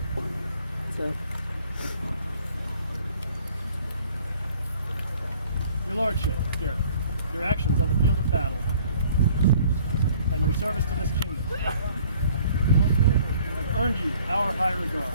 Your Lordship, Gareth, your actions on the field of battle and your service to this kingdom have earned you our high regard.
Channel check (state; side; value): inverted; both; correlation -0.56